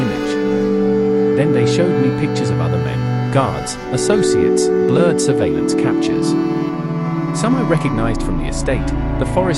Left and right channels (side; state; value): both; identical; correlation 1.00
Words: image. Then they showed me pictures of other men, guards, associates, blurred surveillance captures. Some I recognized from the estate, the